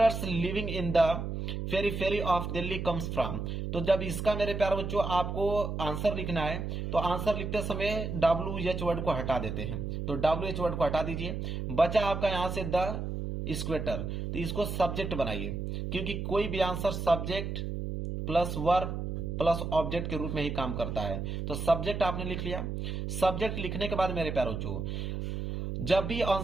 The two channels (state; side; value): noise; right; hum, 4 dB below the sound